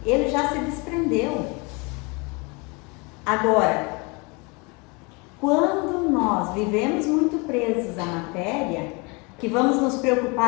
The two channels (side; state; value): right; quieter; 29.1 dB